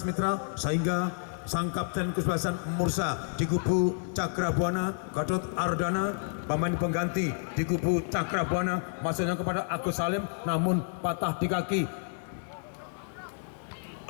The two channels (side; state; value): right; silent; digital silence